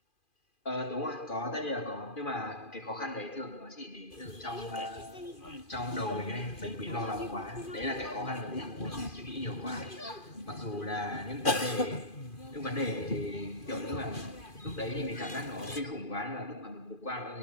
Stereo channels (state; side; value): late; right; 2.4 ms